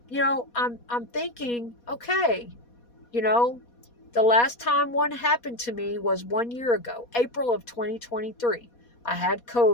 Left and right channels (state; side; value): late; right; 4.2 ms